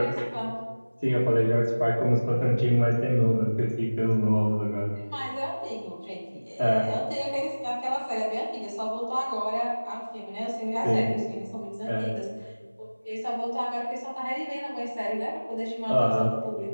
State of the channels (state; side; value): inverted; both; correlation -1.00